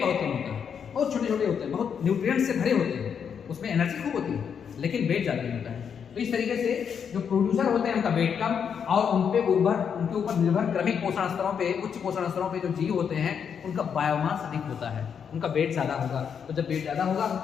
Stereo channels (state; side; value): quieter; right; 7.3 dB